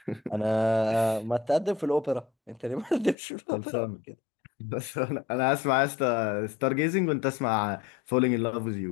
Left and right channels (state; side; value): drops out; right; at 3.2 s